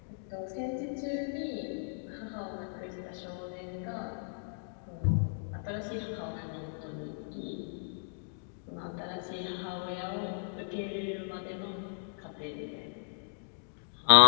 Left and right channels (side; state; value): right; silent; digital silence